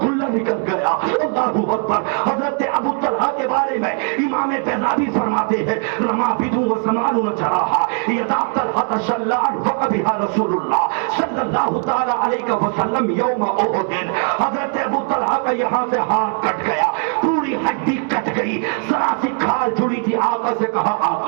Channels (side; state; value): left; quieter; 39.9 dB